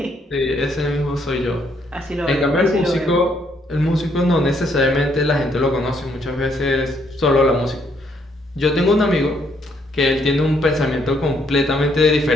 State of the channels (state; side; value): normal; both; correlation 0.71